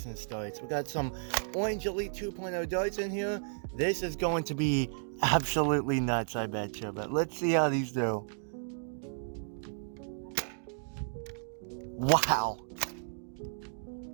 darts. We got some Orange Elite 2.0 darts in here. This is going to be absolutely nuts, I bet you. But let's see how these do. Wow.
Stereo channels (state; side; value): silent; left; digital silence